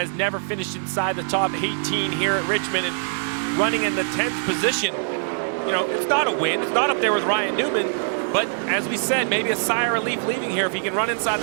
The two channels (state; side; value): silent; left; digital silence